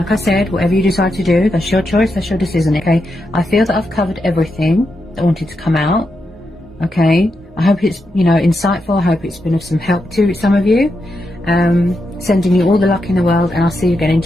I said, whatever you decide to do, that's your choice, that's your decision, okay? I feel that I've covered everything that wanted to come out, okay? I hope it's, you know, insightful. I hope it's been of some help to some of you. Sending you all the luck in the world, and I'll see you again in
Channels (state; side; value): normal; both; correlation 0.85